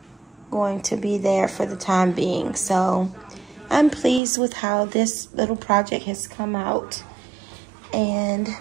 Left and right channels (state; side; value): drops out; left; at 4.2 s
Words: going to be there for the time being. So I'm pleased with how this little project has come out. And